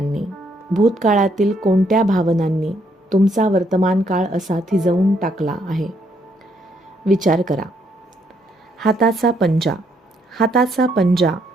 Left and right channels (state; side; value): normal; both; correlation 0.72